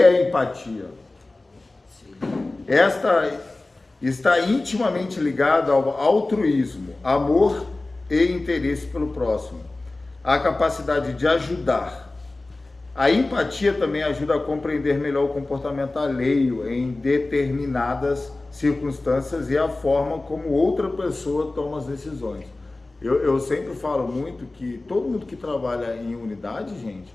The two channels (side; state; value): right; quieter; 3.1 dB